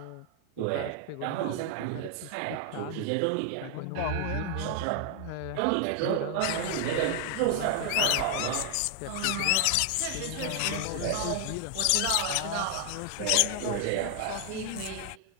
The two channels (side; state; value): both; different; correlation 0.00